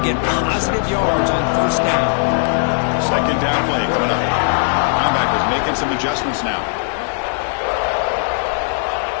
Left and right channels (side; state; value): right; silent; digital silence